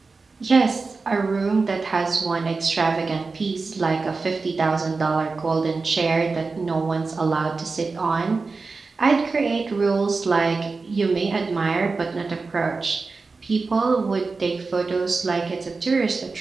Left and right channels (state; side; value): quieter; left; 4.1 dB